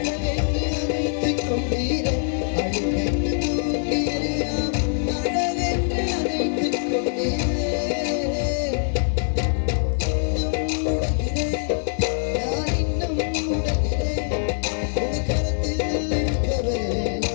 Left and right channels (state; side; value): silent; right; digital silence